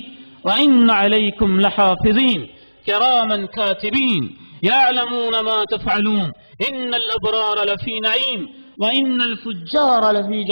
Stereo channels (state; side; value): inverted; both; correlation -1.00